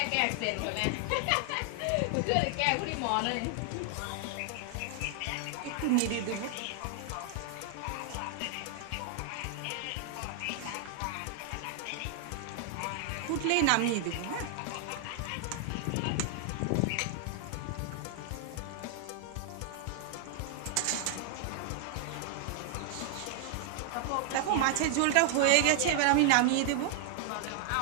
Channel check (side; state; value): both; different; correlation 0.00